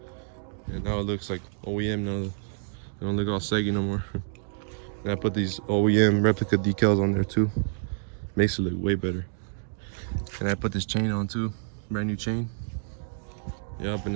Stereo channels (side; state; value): left; silent; digital silence